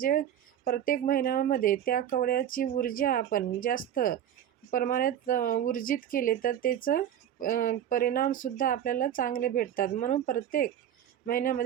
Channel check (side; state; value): left; quieter; 10.3 dB